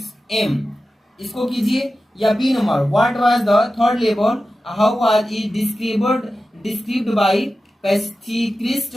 aim, इसको कीजिए। या B number what was the third level, how was it described by pacifist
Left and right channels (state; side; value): normal; both; correlation 0.93